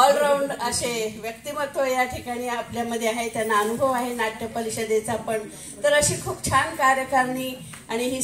असे व्यक्तिमत्व या ठिकाणी आपल्यामध्ये आहे. त्यांना अनुभव आहे नाट्य परिषदेचा पण. तर अशी खूप छान कार्यकारिणी आणि ही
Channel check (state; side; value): identical; both; correlation 1.00